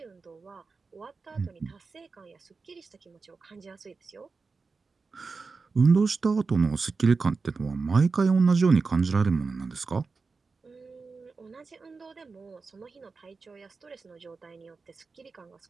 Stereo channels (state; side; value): quieter; left; 4.4 dB